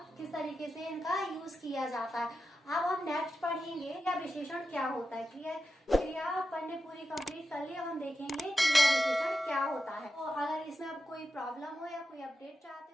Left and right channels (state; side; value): normal; both; correlation 0.90